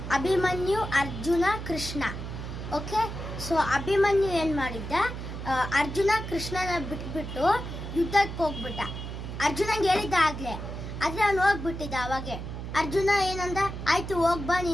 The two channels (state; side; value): noise; right; hum, 7 dB below the sound